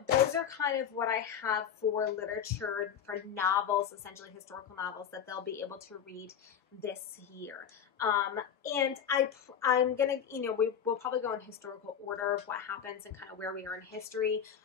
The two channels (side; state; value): right; quieter; 8.4 dB